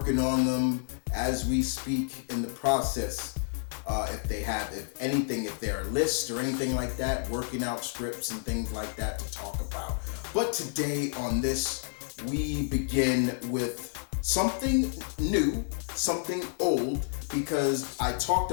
on them as we speak in the process. If there are lists or anything like that, working out scripts and things like that to talk about. But today on this, we begin with something new, something old, because I talked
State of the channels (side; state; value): right; silent; digital silence